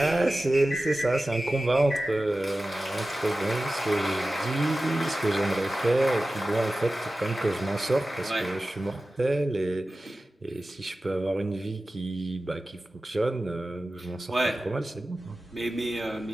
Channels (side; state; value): both; normal; correlation 0.95